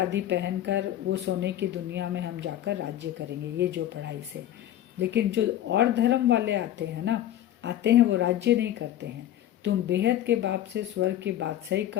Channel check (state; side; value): quieter; right; 12.2 dB